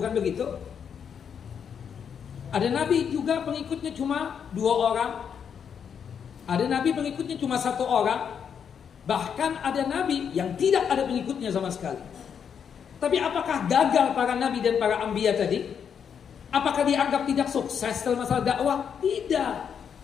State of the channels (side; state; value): right; quieter; 7.5 dB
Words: begitu? Ada Nabi juga pengikutnya cuma 2 orang. Ada Nabi pengikutnya cuma 1 orang. Bahkan ada Nabi yang tidak ada pengikutnya sama sekali. Tapi apakah gagal para Nabi dan para Anbiya tadi? Apakah dianggap tidak sukses dalam masalah dakwah? Tidak.